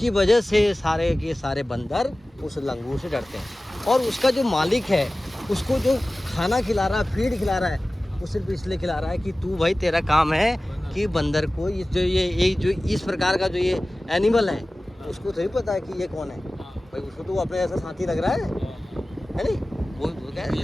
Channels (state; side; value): normal; both; correlation 0.97